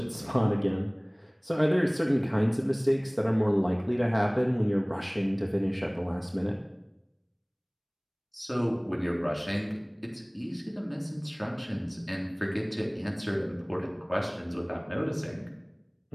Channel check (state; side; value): identical; both; correlation 1.00